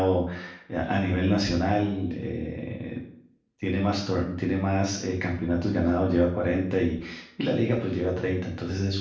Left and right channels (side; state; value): both; identical; correlation 1.00